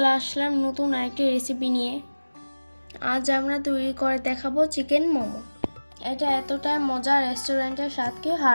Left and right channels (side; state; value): both; inverted; correlation -1.00